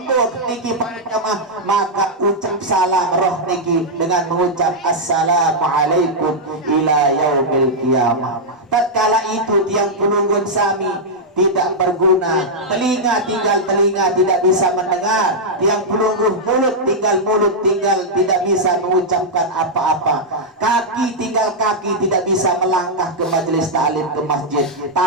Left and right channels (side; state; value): both; normal; correlation -0.06